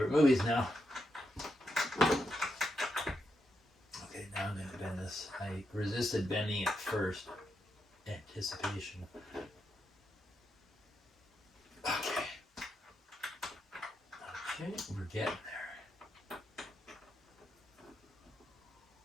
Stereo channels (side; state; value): both; normal; correlation 0.83